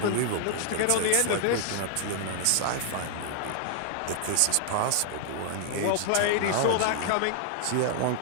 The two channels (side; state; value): both; different; correlation 0.00